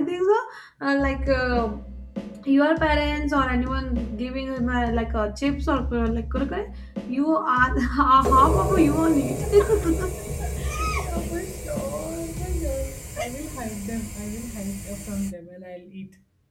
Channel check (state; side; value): identical; both; correlation 1.00